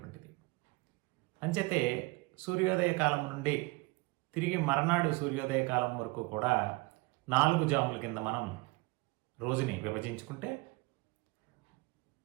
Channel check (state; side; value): quieter; left; 24.5 dB